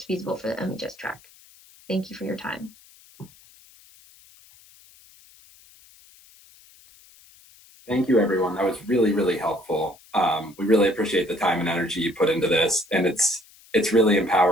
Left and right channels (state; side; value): noise; left; hiss, 26 dB below the sound